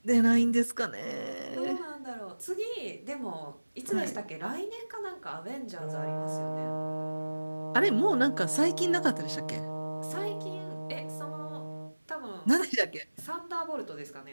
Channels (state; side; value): inverted; both; correlation -1.00